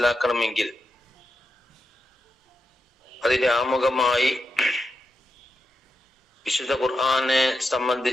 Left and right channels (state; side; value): normal; both; correlation 0.86